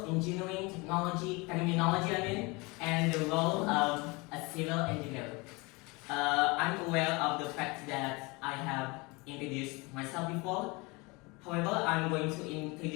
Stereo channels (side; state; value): right; quieter; 26.0 dB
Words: engineering terminology, and the role of a civil engineer. I'm aware of the fact that I have introduced myself before. However, I'm going to